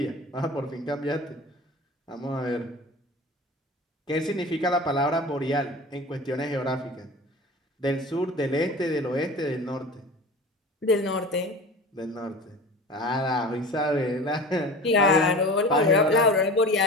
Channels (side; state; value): both; normal; correlation 0.36